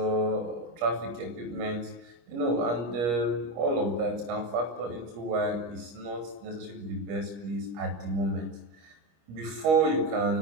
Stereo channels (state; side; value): late; left; 25 ms